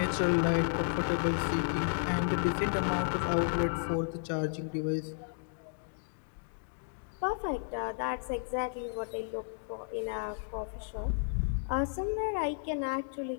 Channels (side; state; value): right; silent; digital silence